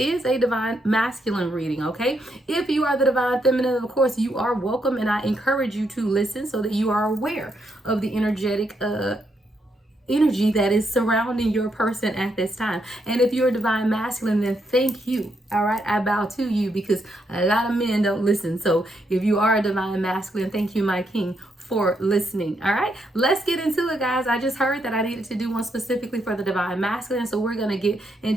a Divine Masculine reading, okay? If you are the Divine Feminine, of course you are welcome, and I encourage you to listen so that you are aware of the energetic energy that is surrounding your person at this time. And if you're a Divine Masculine, then thank you. All right, I bow to you because a lot of men don't listen. So if you are a Divine Masculine, thank you, my king, for listening. All right, let's get into it, guys. I just heard that I needed to do one specifically for the Divine Masculine, so we're going to get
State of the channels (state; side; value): normal; both; correlation 0.78